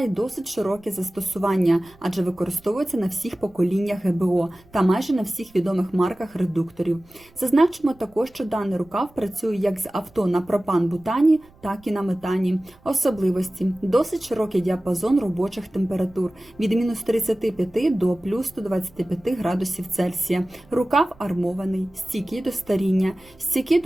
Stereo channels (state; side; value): noise; right; rumble, 28 dB below the sound